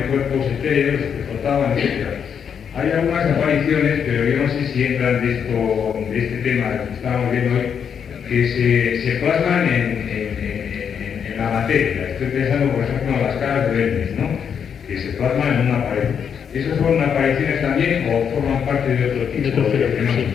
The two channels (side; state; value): right; quieter; 7.5 dB